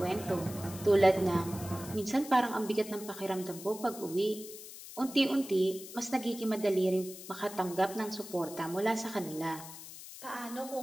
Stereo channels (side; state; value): left; noise; hiss, 14 dB below the sound